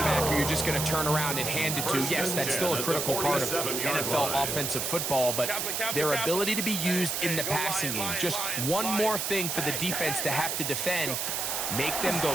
back who you're just going to turn around and hand it to, yes, that's still a critical part of NFL offensive football, but their ability to be used in the passing game, just one more thing for the defense to have to defend, make them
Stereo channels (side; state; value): right; noise; hiss, 1 dB below the sound